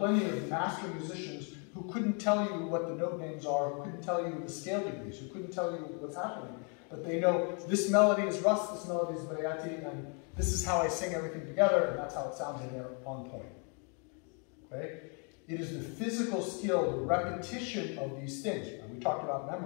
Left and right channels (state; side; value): quieter; right; 37.8 dB